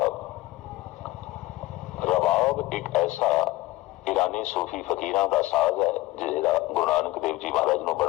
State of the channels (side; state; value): right; quieter; 18.4 dB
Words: रबाब एक ऐसा ईरानी सूफी फकीरां का साज है जिहड़ा गुरु नानक देव जी महाराज नूं